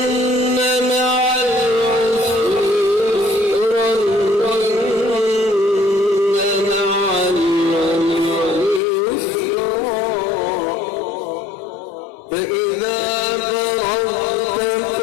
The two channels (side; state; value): right; drops out; at 8.8 s